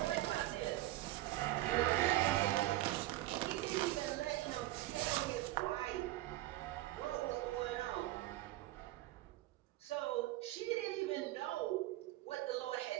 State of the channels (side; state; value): left; quieter; 16.8 dB